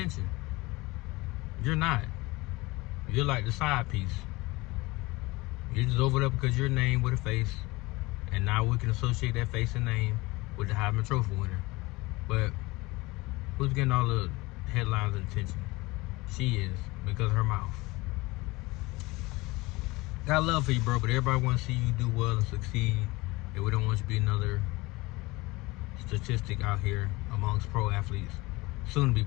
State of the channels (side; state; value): right; quieter; 22.3 dB